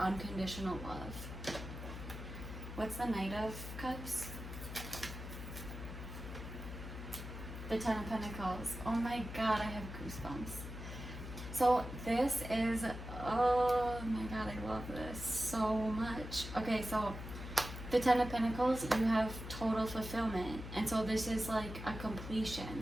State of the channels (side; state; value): left; noise; hum, 9 dB below the sound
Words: love. What's the Knight of Cups? The Ten of Pentacles. Oh my God, I have goosebumps. So this is, oh my God, I love this so much. Okay, so the Ten of Pentacles, you have total fulfillment. And so this is like a